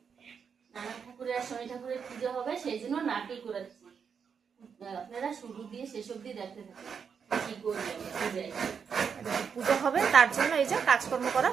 নানা ঠাকুরের আর শনি ঠাকুরের পূজা হবে, সেই জন্য নারকেল করেছি। আপনারা শুরু দিয়ে শেষ অব্দি দেখতে থাকুন কি করবেন। পূজা হবে তার জন্য এই যে কাজকর্ম করা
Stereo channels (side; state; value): left; quieter; 6.6 dB